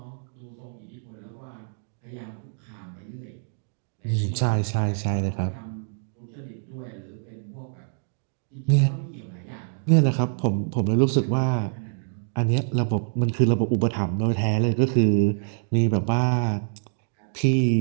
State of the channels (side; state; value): left; silent; digital silence